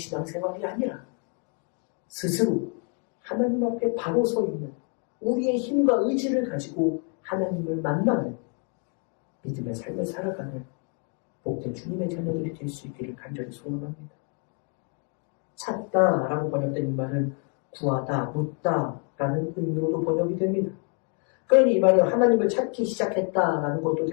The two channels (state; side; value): quieter; right; 38.6 dB